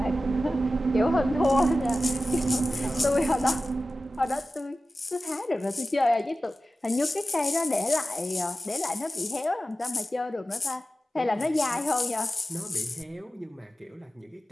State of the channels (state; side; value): normal; both; correlation 0.94